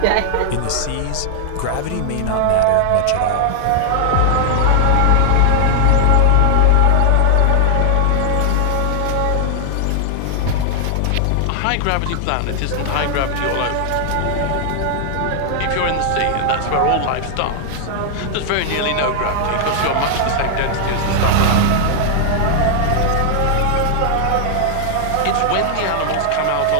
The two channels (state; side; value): different; both; correlation 0.00